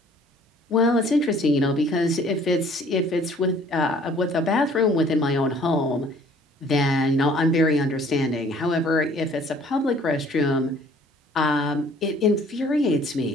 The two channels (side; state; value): both; normal; correlation 0.56